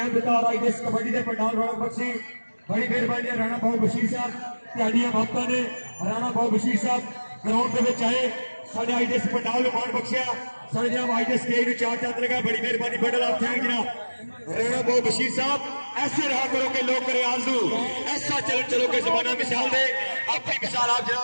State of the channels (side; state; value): both; inverted; correlation -1.00